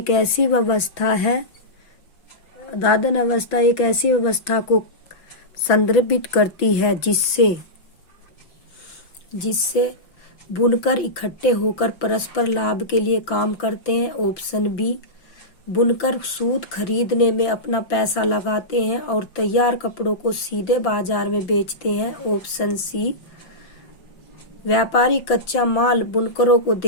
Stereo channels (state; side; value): late; right; 5.9 ms